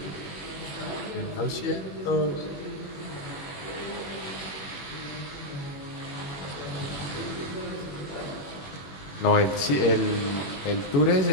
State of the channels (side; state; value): right; late; 21 ms